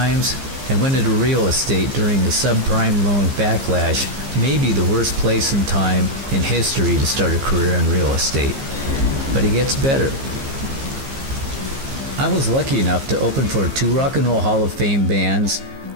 and went into real estate during the subprime loan backlash, maybe the worst place and time in history to start a career in real estate. But it gets better. I was lucky enough to open for 2 Rock and Roll Hall of Fame bands.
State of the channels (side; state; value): left; late; 15 ms